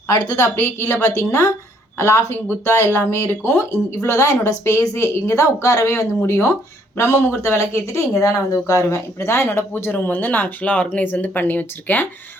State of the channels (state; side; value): normal; both; correlation 0.66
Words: அடுத்தது அப்படியே கீழே பார்த்தீங்கன்னா லாஃபிங் புத்தா எல்லாமே இருக்கும். இவ்வளோ தான் என்னோடய ஸ்பேஸே. இங்கே தான் உட்காரவே வந்து முடியும். பிரம்ம முகூர்த்த விளக்கு ஏற்றிட்டு இங்கே தான் நான் வந்து உட்காருவேன். இப்படி தான் என்னோடய பூஜை ரூம் வந்து நான் ஆக்சுவலாக ஆர்கனைஸ் வந்து பண்ணி வச்சுருக்கேன்.